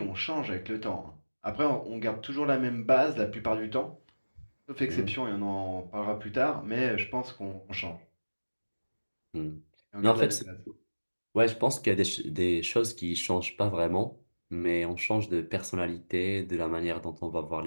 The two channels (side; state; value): both; inverted; correlation -1.00